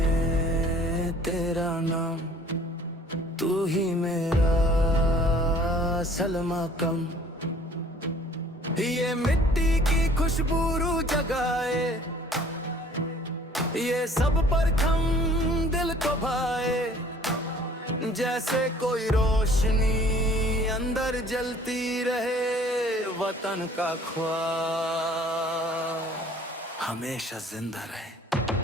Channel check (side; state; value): both; normal; correlation 0.54